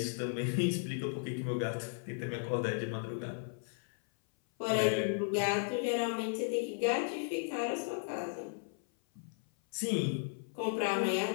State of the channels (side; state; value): right; silent; 54 dB below the other